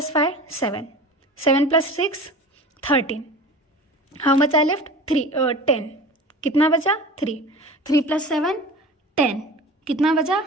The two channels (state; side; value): normal; both; correlation 0.37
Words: 5 7, 7 + 6 13। How much I left? 10। कितना बचा? 3, 3 + 7 10। कितना बचा?